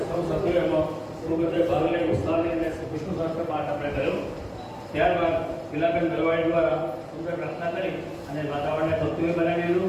સૌ સભ્યોએ એમાં પૂર્વતે ભાગ લઈ ઉત્સાહ લઈને વિષ્ણુ સહસ્ત્ર પાઠ આપણે કર્યો. ત્યારબાદ ગિલાબેન દરવાડી દ્વારા સુંદર પ્રાર્થના કરી અને વાતાવરણને ભક્તિમય બનાવી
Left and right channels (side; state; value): both; identical; correlation 1.00